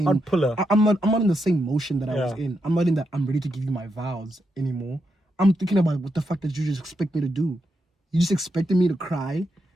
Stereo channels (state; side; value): normal; both; correlation 0.83